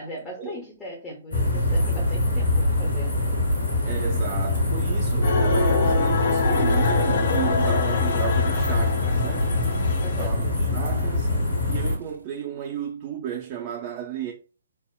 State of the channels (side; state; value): both; inverted; correlation -0.62